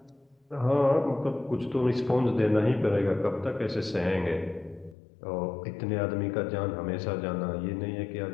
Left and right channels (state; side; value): drops out; right; at 5.0 s